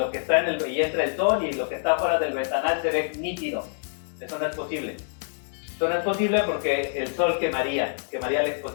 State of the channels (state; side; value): silent; right; 58 dB below the other